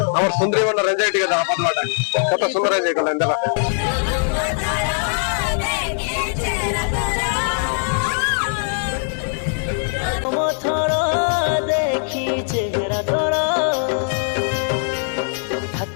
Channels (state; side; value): silent; right; digital silence